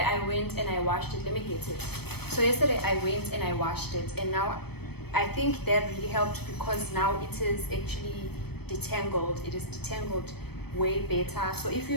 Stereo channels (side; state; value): right; late; 0.97 ms